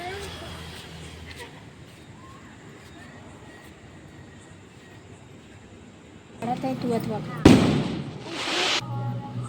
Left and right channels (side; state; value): both; identical; correlation 1.00